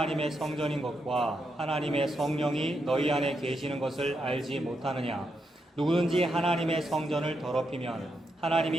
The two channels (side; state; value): both; normal; correlation 0.83